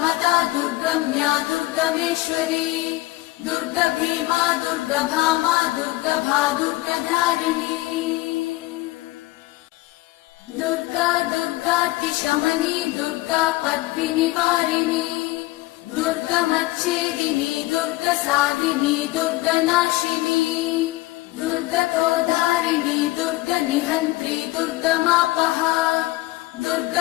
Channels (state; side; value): quieter; right; 19.0 dB